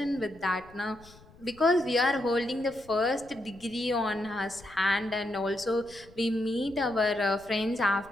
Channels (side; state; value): left; noise; rumble, 24 dB below the sound